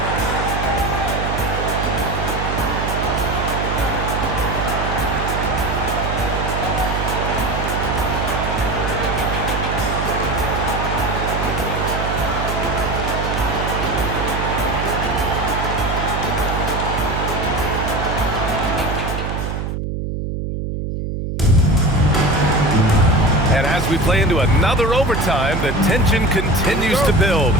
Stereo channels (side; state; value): right; noise; hum, 3 dB below the sound